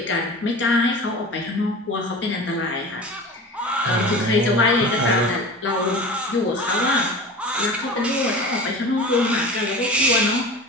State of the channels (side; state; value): both; normal; correlation 0.35